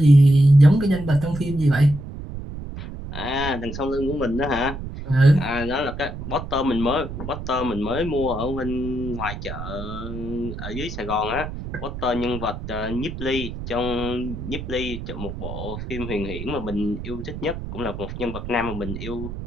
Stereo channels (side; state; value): right; noise; rumble, 8 dB below the sound